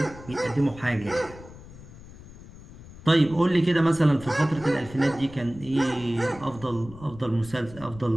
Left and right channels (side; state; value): left; noise; rumble, 18 dB below the sound